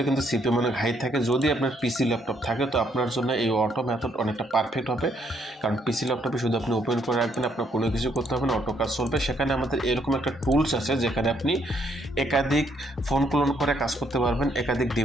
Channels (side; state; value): both; normal; correlation 0.71